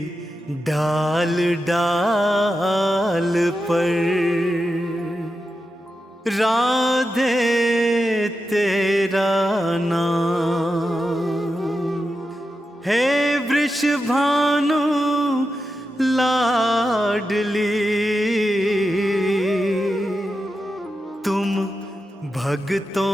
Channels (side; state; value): both; normal; correlation 0.89